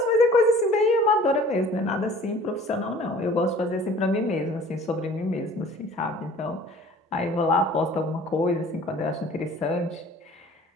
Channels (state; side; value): normal; both; correlation 0.48